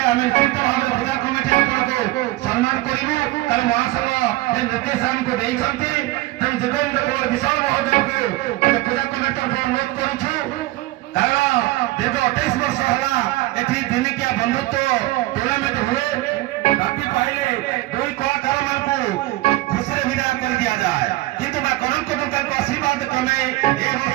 ଆମେ ନିଶ୍ଚିତ ଭାବରେ ପୂଜା କମିଟି ଆପଣଙ୍କୁ ସମ୍ମାନ କରିବୁ। କାରଣ ମହାସଂଘ ଯେ ନିର୍ଦ୍ଦେଶାଙ୍କୁ ଦେଇଛନ୍ତି ତେଣୁ ଯୋଗେନ୍ଦ୍ର କୁମାର ବିଶ୍ୱାଳ ମହୋଦୟଙ୍କୁ ଆମେ ପୂଜା କମିଟି ତରଫରୁ ଅନୁରୋଧ କରୁଛୁ। କାରଣ ଦୀର୍ଘ 28 ବର୍ଷ ହେଲା ଏଠି ଦିନିକିଆ ବନ୍ଧୁତ୍ୱ ଟୁର୍ଣ୍ଣାମେଣ୍ଟ ହୁଏ। ରାତି ପାଇଲେ ଦୁଇ କଳାକାରମାନଙ୍କୁ ଖୁସିରେ ବିଦାୟ କରି ଦିଆଯାଏ। କିନ୍ତୁ ମା କନକ ଦୁର୍ଗାଙ୍କ ଆଶୀର୍ବାଦ କ୍ରମେ ଏ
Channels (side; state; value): left; quieter; 18.2 dB